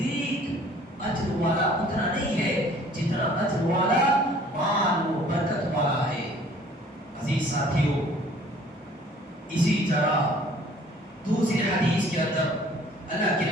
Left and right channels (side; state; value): both; normal; correlation 0.54